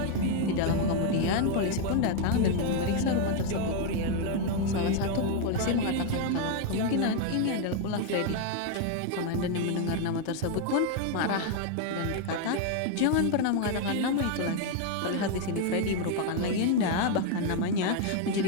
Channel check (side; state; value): both; different; correlation 0.01